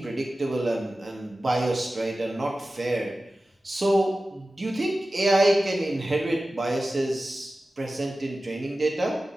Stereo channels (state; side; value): normal; both; correlation 0.95